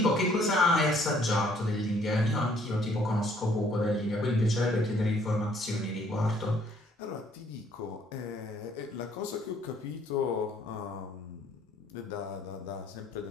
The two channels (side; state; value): both; normal; correlation 0.63